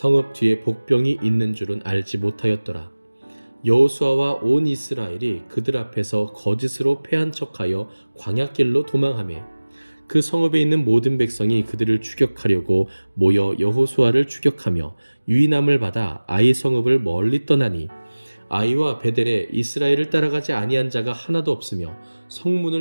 뒤에 복병이 있는 줄은 알지 못하였더라. 여호수아와 온 이스라엘이 그들 앞에서 거짓으로 패한 척하여 광야길로 도망하매 그 성읍에 있는 모든 백성이 그들을 추격하려고 모여 여호수아를 추격하며 유인함을 받아 아이 성읍을 멀리 떠나니 아이와 베델에 이스라엘을 따라가지 아니한 자가 하나도 없으며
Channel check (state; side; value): inverted; both; correlation -1.00